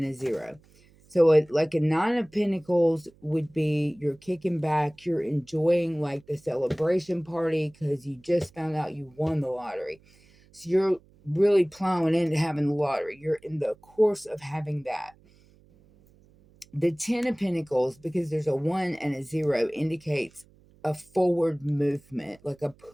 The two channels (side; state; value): right; noise; hum, 29 dB below the sound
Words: a 0. So, like a 9 of Pentacles would be you're kicking back, you're enjoying like the celebration party because you just found out you won the lottery. So, you're really plowing into having the lottery. You're in the course of having that. The 10 of Pentacles, because there's a 1 and a 0, indicates a forward movement, like a